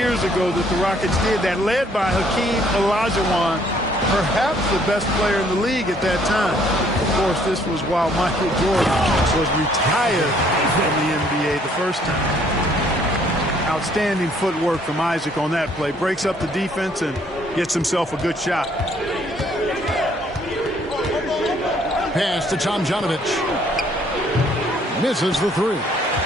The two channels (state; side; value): normal; both; correlation 0.63